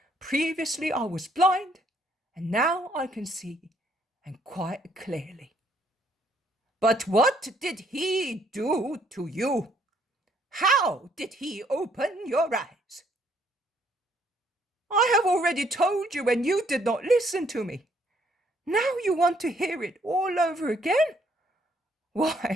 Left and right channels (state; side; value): normal; both; correlation 0.67